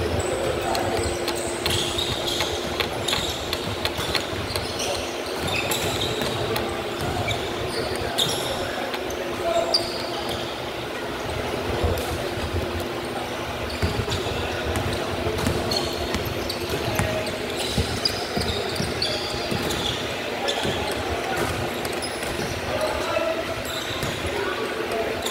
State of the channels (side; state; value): both; identical; correlation 1.00